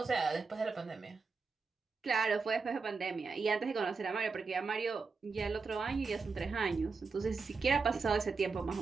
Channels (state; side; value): quieter; left; 4.6 dB